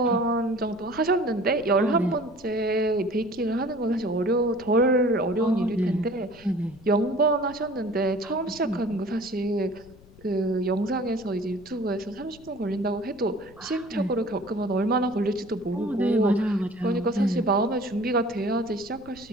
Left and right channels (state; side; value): noise; left; rumble, 23 dB below the sound